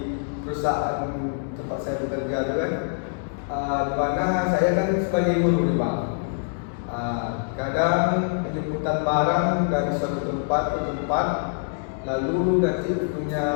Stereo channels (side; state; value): right; silent; digital silence